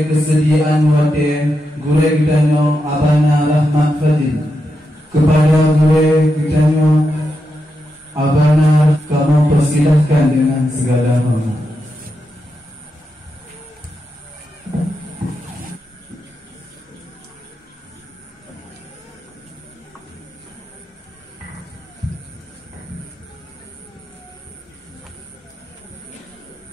kesediaan wate gure kita Abana Rahmat Fadil kepada gure kita Abana, kamu persilahkan dengan segala hormat.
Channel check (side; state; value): both; normal; correlation 0.86